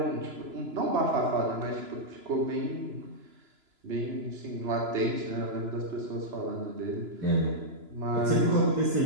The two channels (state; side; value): late; left; 3.0 ms